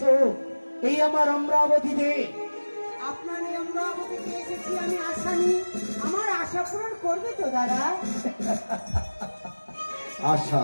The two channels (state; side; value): inverted; both; correlation -1.00